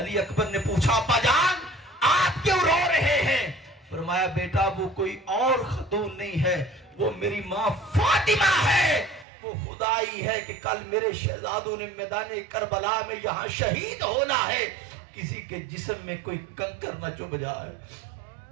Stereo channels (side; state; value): left; drops out; at 9.2 s